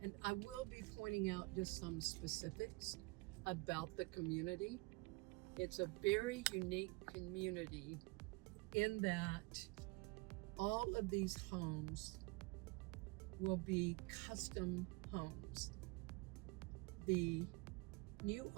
and I will be pointing out just some specifics about the community. It's a very unique community in that all of these homes will be custom homes. The new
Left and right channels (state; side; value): quieter; left; 26.4 dB